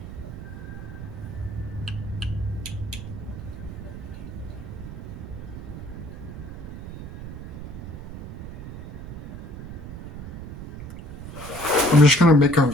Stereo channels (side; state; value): right; noise; rumble, 10 dB below the sound